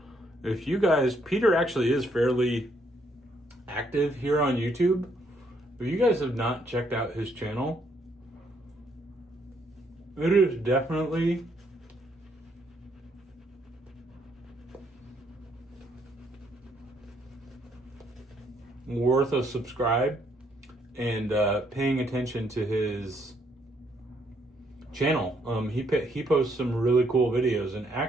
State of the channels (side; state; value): both; normal; correlation 0.71